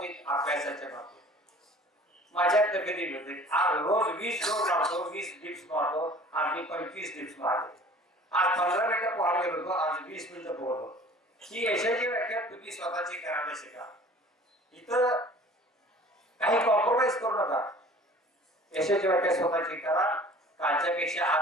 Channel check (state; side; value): normal; both; correlation 0.47